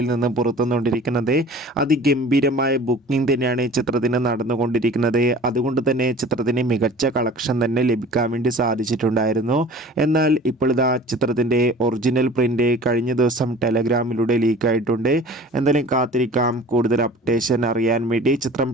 നിന്നും പുറത്തുകൊണ്ടിരിക്കുന്നത്. ഗംഭീരമായ ബുക്കിംഗ് തന്നെയാണ് ചിത്രത്തിന് നടന്നുകൊണ്ടിരിക്കുന്നത്. അതുകൊണ്ട് തന്നെ ചിത്രത്തിന് മികച്ച കളക്ഷൻ തന്നെ ലഭിക്കാൻ വേണ്ടി സാധിച്ചിട്ടുണ്ടായിരുന്നു. എന്നാൽ ഇപ്പോഴിതാ ചിത്രത്തിൻ്റെ ഒറിജിനൽ പ്രിൻ്റ് കഴിഞ്ഞ ദിവസം ടെലഗ്രാമിലൂടെ ലീക്കായിട്ടുണ്ട്. എന്തായാലും കാത്തിരിക്കാം. കൂടുതൽ അപ്ഡേഷൻ അറിയാൻ വേണ്ടി ചിത്രം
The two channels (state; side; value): normal; both; correlation 0.45